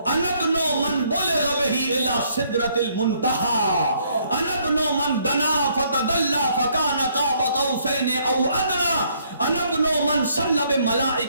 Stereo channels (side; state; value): both; inverted; correlation -0.68